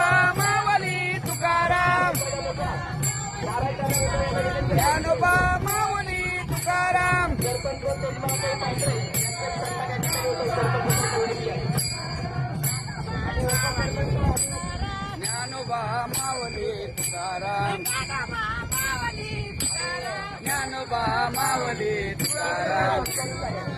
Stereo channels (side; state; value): both; identical; correlation 1.00